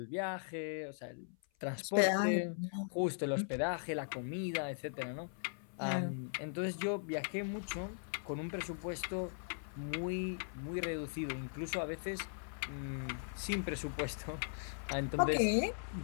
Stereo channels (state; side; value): silent; right; 52 dB below the other